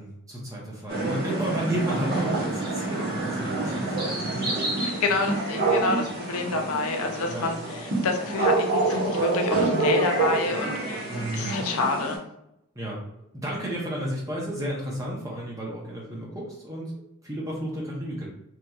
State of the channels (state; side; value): normal; both; correlation 0.18